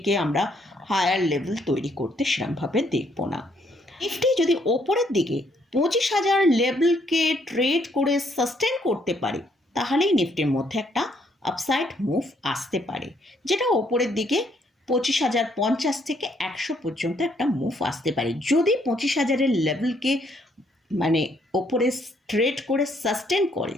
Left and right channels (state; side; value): normal; both; correlation 0.70